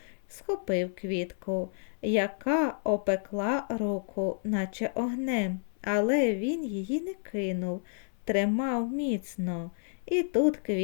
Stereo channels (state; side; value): silent; right; 58 dB below the other